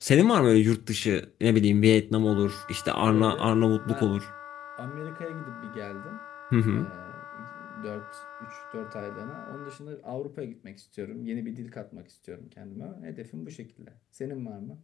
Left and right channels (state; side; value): quieter; right; 11.2 dB